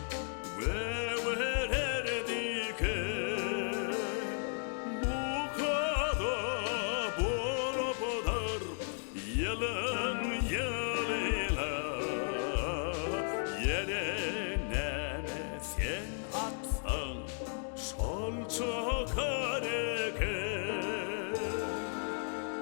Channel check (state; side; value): silent; right; 55 dB below the other